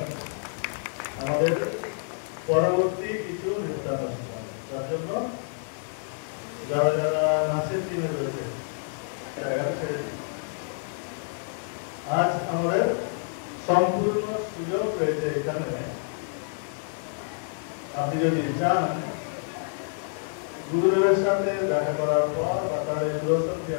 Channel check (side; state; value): right; silent; digital silence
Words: আমাদের পরবর্তী কিছু নির্বাচন তার জন্য যারা যারা নাচের টিমে রয়েছে আজ আমাদের সম্পূর্ণ সুযোগ রয়েছে এখানে। আপনি যদি চান গুরুদেবের সাথে দেখা করার পর বা তার